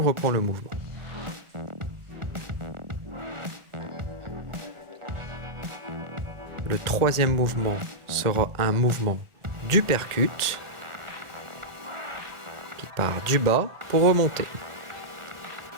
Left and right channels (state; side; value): late; left; 1.4 ms